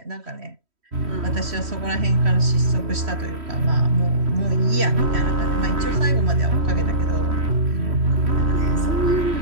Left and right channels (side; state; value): left; late; 3.1 ms